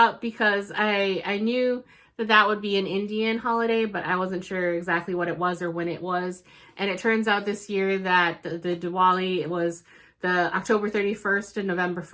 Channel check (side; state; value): both; identical; correlation 1.00